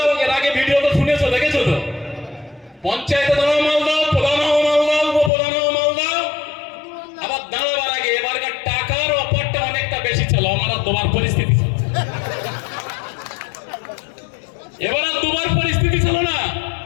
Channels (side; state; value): right; drops out; at 5.3 s